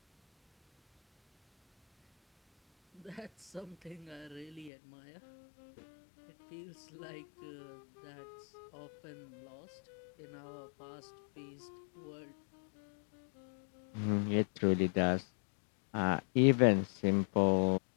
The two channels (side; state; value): right; drops out; at 4.7 s